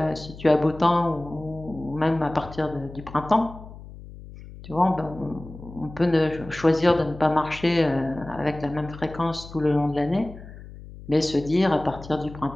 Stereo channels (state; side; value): noise; left; hum, 16 dB below the sound